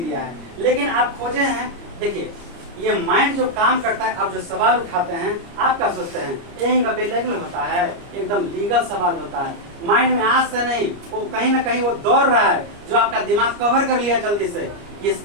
दिया है, लेकिन आप खोजे हैं। देखिए ये माइंड जो काम करता है, आप जो सवाल उठाते हैं आप क्या सोचते हैं यही का बेलीगल होता है, एकदम लीगल सवाल होता है। माइंड में आज से नहीं, वो कहीं ना कहीं वो दौड़ रहा है, जो आपका दिमाग कवर कर लिया जल्दी से कि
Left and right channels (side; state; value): left; late; 29 ms